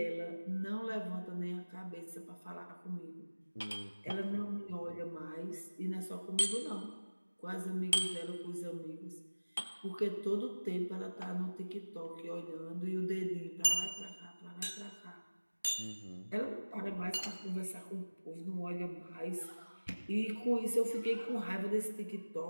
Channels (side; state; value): both; inverted; correlation -1.00